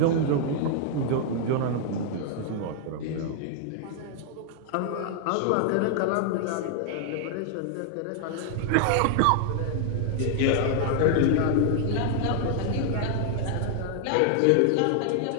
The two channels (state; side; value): different; both; correlation 0.00